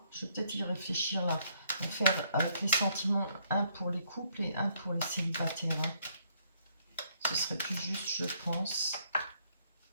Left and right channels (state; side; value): inverted; both; correlation -0.69